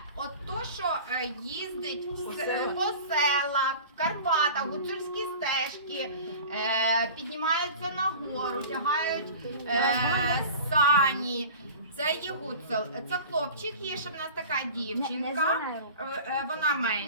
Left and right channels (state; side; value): inverted; both; correlation -0.39